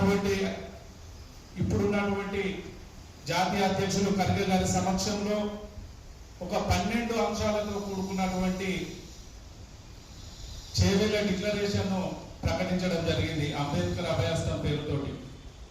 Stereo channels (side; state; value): both; identical; correlation 1.00